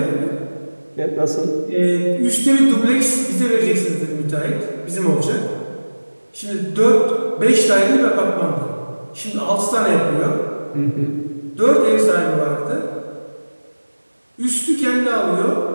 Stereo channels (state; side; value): inverted; both; correlation -1.00